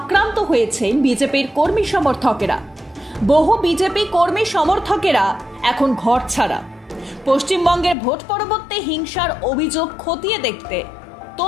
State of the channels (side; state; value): right; drops out; at 8.0 s